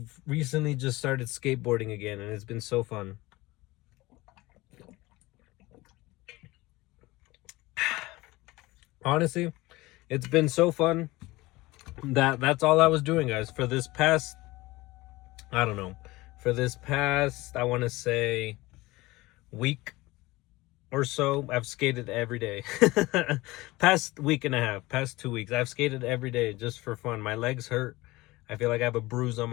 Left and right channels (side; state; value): right; quieter; 20.3 dB